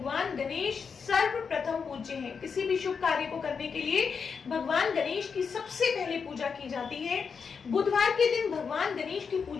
गणेश सर्वप्रथम पूज्य हैं। किसी भी शुभ कार्य को करने के लिए भगवान गणेश की सबसे पहले पूजा की जाती है। बुधवार के दिन भगवान गणेश की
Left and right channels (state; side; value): quieter; right; 5.9 dB